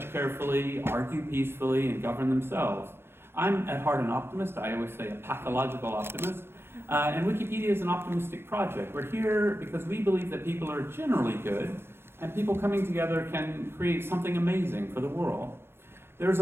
carefully, argue peacefully, and govern themselves. I'm at heart an optimist. I always say a pathological optimist. And Wikipedia is an optimistic project. We're here because we believe that people are generally good, and people coming together can create something amazing for the world. There's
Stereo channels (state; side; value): late; left; 0.12 ms